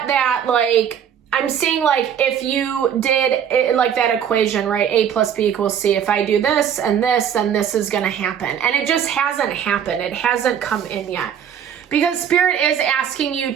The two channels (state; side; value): quieter; left; 8.6 dB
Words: that, I'm seeing if you did it, that equation, right? A plus B equals C. If I do this and this, then this is going to happen. And it just hasn't happened. It hasn't come in yet. Because Spirit is asking you